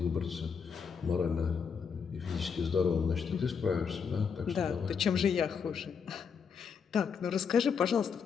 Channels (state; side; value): quieter; right; 6.3 dB